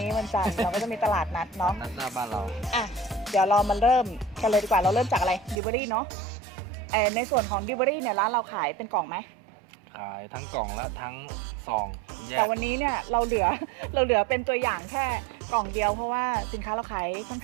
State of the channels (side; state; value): left; drops out; at 5.6 s